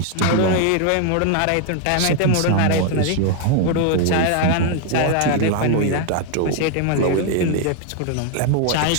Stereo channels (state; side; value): different; both; correlation 0.00